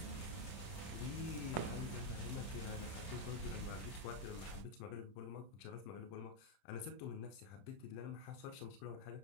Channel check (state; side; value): late; right; 30 ms